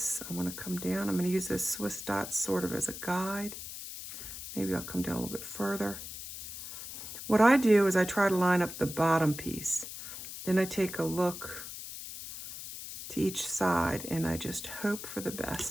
I want to come down. I'm going to use this Swiss dot sort of as a guide. Maybe I'll come down a little bit further. What I do is I try to line up the bottom piece. Then I take a look to each side and I just hope for the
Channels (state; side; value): noise; left; hiss, 10 dB below the sound